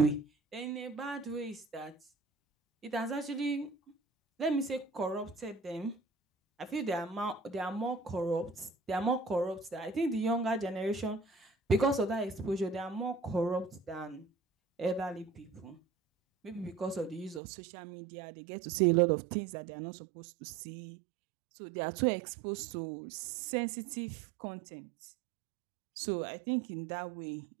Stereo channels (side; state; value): left; drops out; at 17.4 s